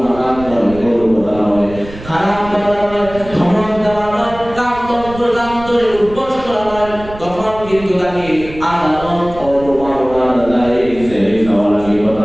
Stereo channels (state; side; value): noise; right; rumble, 15 dB below the sound